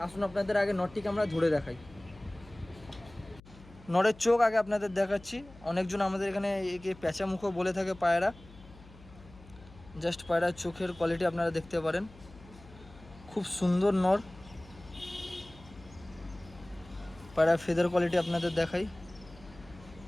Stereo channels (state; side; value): noise; left; hum, 21 dB below the sound